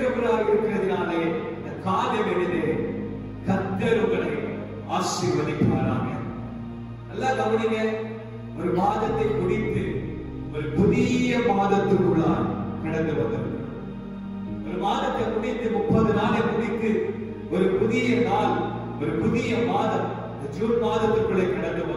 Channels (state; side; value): identical; both; correlation 1.00